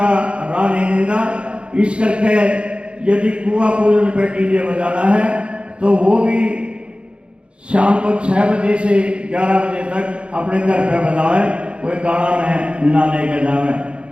राह नहीं देगा। इस करके यदि कुआं पूजन पे डीजे बजाना है तो वो भी शाम को 6 बजे से 11 बजे तक अपने घर पे बजावे, कोई गाना में ना लेके जावे।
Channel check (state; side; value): late; left; 0.057 ms